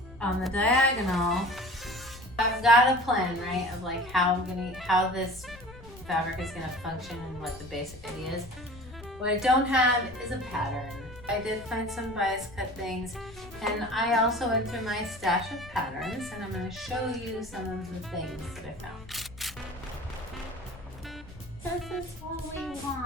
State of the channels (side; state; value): left; noise; rumble, 18 dB below the sound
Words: on the diagonal. I've got a plan, right, of like how this fabric is gonna function and what the basic idea is. What I don't have is a pattern. I did find some bias cut things, and I also went through my stash of patterns, and I'm going to show you some of the things that I found. This is what we